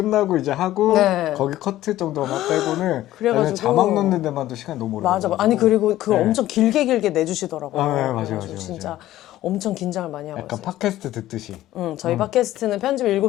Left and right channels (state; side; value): quieter; right; 14.5 dB